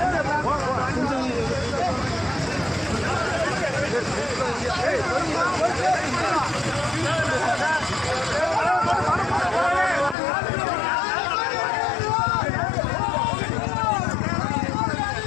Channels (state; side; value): drops out; right; at 10.2 s